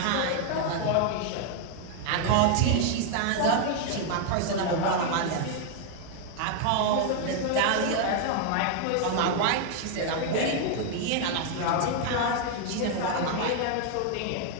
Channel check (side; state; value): both; different; correlation 0.00